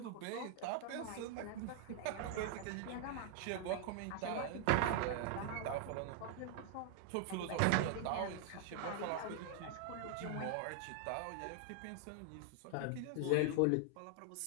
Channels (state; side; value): different; both; correlation 0.00